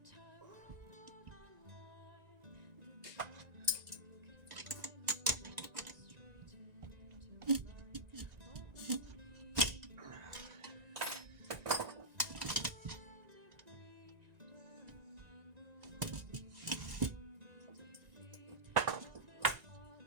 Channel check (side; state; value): left; late; 1.9 ms